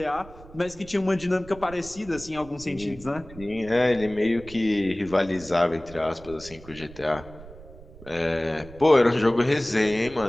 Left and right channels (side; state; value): right; noise; rumble, 18 dB below the sound